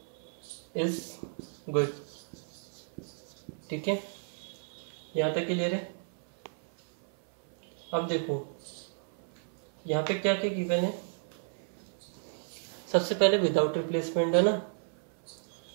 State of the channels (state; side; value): silent; left; 56 dB below the other